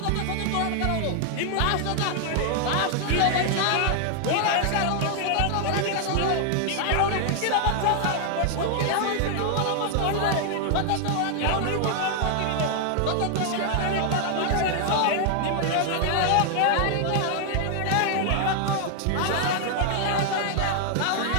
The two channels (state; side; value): different; both; correlation 0.00